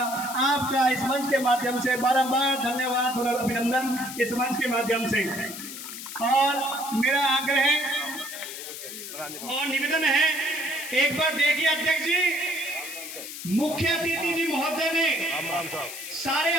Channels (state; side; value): noise; left; hiss, 10 dB below the sound